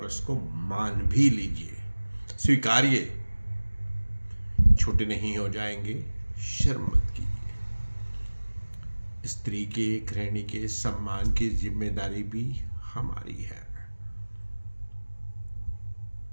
उसको मान भी लीजिए, स्वीकारिए। छोटे नहीं हो जाएंगे, शर्म मत कीजिए। स्त्री के, गृहिणी के सम्मान की जिम्मेदारी भी हमारी है।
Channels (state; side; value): inverted; both; correlation -1.00